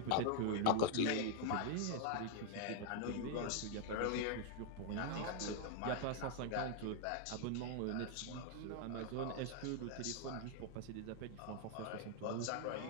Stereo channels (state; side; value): different; both; correlation 0.00